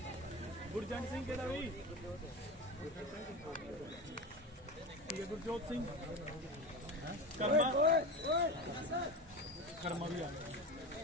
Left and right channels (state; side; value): normal; both; correlation 0.25